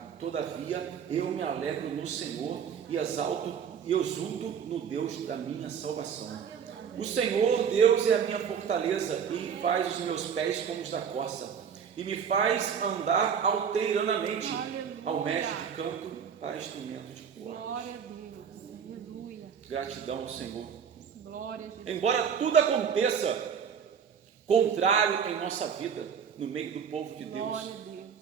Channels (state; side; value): quieter; left; 7.3 dB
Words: Todavia, eu me alegro no Senhor e exulto no Deus da minha salvação. O Senhor, Deus, é a minha fortaleza e faz os meus pés como os da corça, e me faz andar alteiranamente ao mestre de canto para instrumento de cordas. Glória a Deus, aleluia. Gratidão ao Senhor. Glória a Deus. Embora tudo aconteça contrário em nossa vida, no meio do povo de Deus, Glória a Deus.